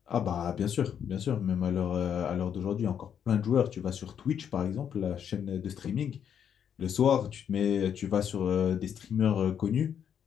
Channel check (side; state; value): right; quieter; 8.5 dB